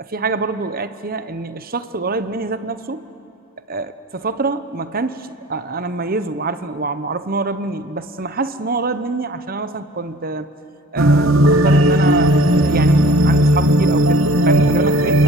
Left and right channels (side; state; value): both; normal; correlation 0.46